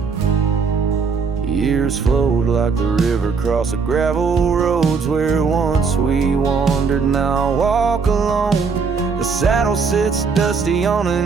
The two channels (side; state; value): left; quieter; 5.2 dB